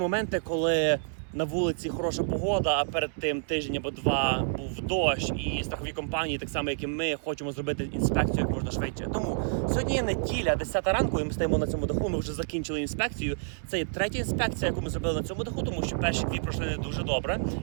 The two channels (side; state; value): left; silent; 59 dB below the other